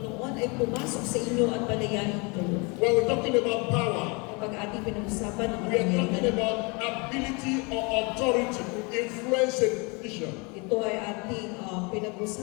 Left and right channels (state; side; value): quieter; right; 30.0 dB